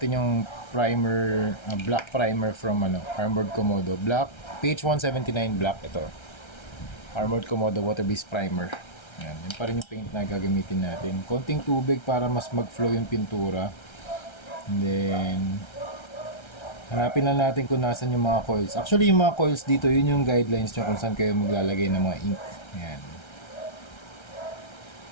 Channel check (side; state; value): right; late; 1.3 ms